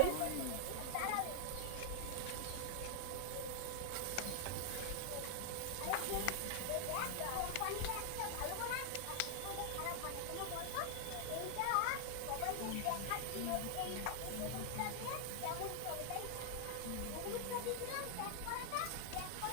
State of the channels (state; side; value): different; both; correlation 0.00